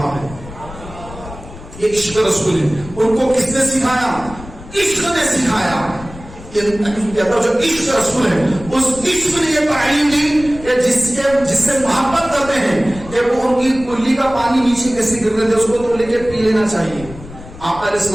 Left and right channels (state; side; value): noise; left; rumble, 15 dB below the sound